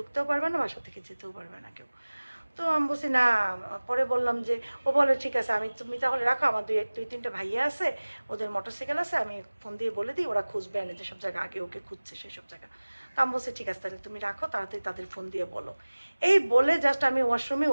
পারবে না, বাসা থেকে যেতেও পারবে না কেউ। তো আমি বলছি না। পরে বললাম যে, ও বলে ঠিক আছে তুমি তাহলে রাখো, আমার 2-3টা ভাইয়া আছে, ওদের মোটরসাইকেল আছে, আমি ফোন দিয়ে বলে দিই, ওরা খুঁজবে এনে যেসব জায়গা আগে ওকে খুঁজছে সেসব জায়গা। তো আমি বলছি ঠিক আছে তাহলে তুমি রাখো, তাড়াতাড়ি তাদের ফোন দিয়ে বলো। এই বলে জাস্ট আমি ওয়াশরুমে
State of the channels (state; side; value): inverted; both; correlation -1.00